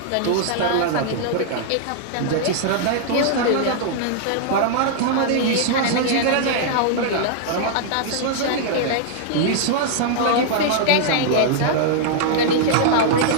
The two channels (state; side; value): different; both; correlation -0.01